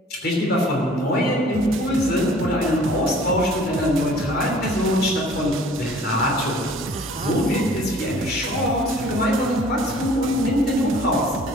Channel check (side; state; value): both; normal; correlation 0.52